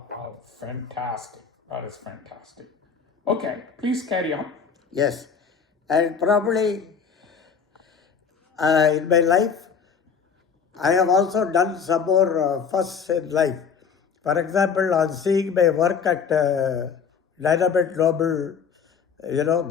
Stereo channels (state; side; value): quieter; right; 6.4 dB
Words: fantastic. That is fantastic. Okay, please carry on. Yes. And probably in my life, I have also done some more firsts in life. For example, on seeing my work at Dynamite Global,